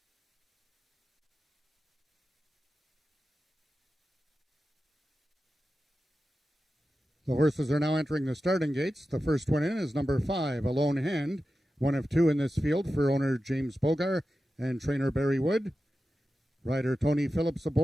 The horses are now entering the starting gates. The first one in is number 5, A Lone Hand, one of 2 in this field for owner James Bogar and trainer Barry Wood. Rider Tony Phillips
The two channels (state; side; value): normal; both; correlation 0.92